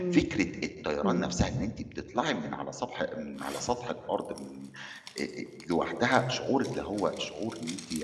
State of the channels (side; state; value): both; identical; correlation 1.00